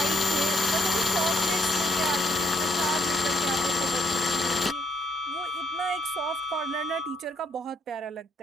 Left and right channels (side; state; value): both; normal; correlation 0.72